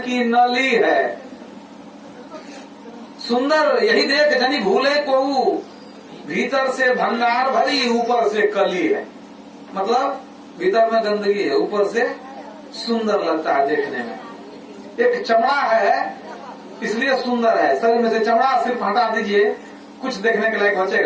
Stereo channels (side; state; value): both; identical; correlation 1.00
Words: नली है। सुंदर यही देख जनी भूले को, भीतर से भंगार भरी ऊपर से कली है। मतलब भीतर में गंदगी है, ऊपर से सुंदर लगता है देखने में। एक चमड़ा है इसलिए सुंदर है, शरीर में से चमड़ा सिर्फ हटा दीजिए, कुछ देखने के लायक